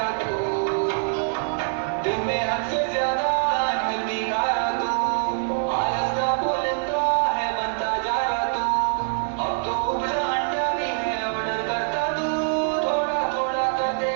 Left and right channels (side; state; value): left; silent; digital silence